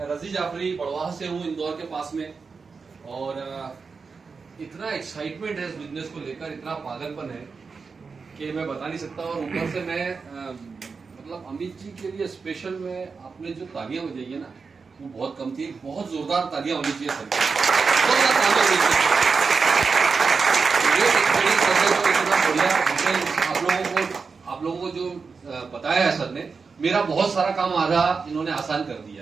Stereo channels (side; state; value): left; quieter; 4.9 dB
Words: रजी जाफरी बड़वाह से हूँ, इंदौर के पास में। और इतना एक्साइटमेंट है इस बिजनेस को लेकर, इतना पागलपन है कि मैं बता नहीं सकता। और ऊपर से मैं मतलब अमित जी के लिए स्पेशल में आपने जो तालियां बजाई है ना, वो बहुत कम थी। बहुत जोरदार तालियां होनी चाहिए सर, जोरदार तालियां होनी चाहिए। आप लोगों को जो बताया है सर ने, मेरा बहुत सारा काम आधा इन्होंने आसान कर